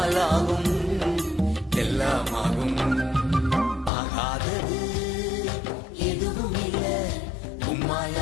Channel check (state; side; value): drops out; right; at 3.9 s